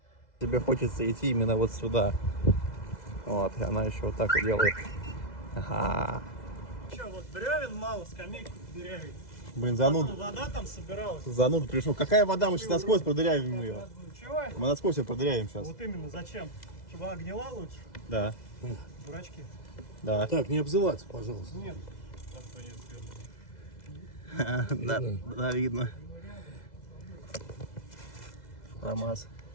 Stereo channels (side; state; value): right; late; 2.0 ms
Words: Тебе хочется идти именно вот сюда. Вот, и она еще вот так вот делает. Ага. Че, вот бревен мало, скамейку дырявить. Блин, зануда. Вода там собиралась. Зануда пришел. Какая вода? Мы сейчас насквозь продырявим ее. Чего? Мы насквозь ее продырявим сейчас. Вот именно, зачем? Чтобы она гнила лучше? Да. Дурачки. Да. Так, не обзываться, пожалуйста. Нет. Да, видно. ФАМАЗ.